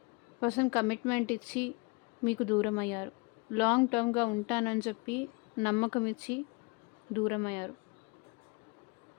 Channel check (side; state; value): right; quieter; 29.4 dB